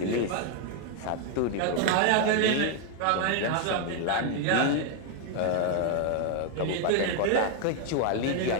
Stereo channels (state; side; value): different; both; correlation 0.01